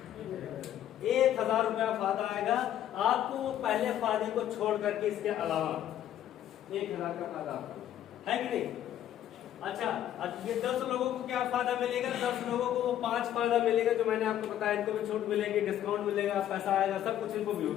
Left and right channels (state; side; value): quieter; right; 11.5 dB